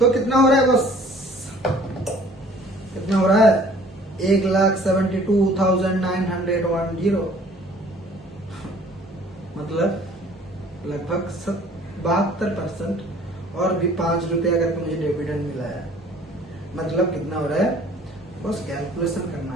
कितना हो रहा है बस, कितना हो रहा है, 1,72,910, मतलब लगभग 72%, और भी 5 रुपया करके मुझे डिविडेंड मिला है। मतलब कितना हो रहा है, बस कैलकुलेशन करना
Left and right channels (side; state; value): both; normal; correlation 0.53